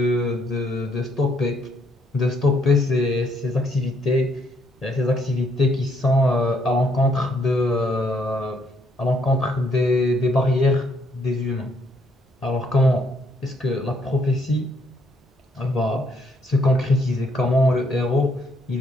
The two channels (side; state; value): both; normal; correlation 0.71